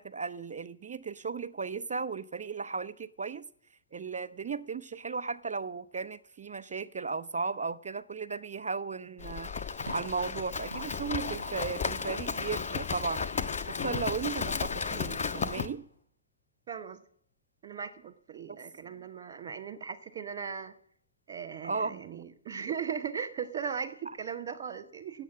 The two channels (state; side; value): inverted; both; correlation -0.43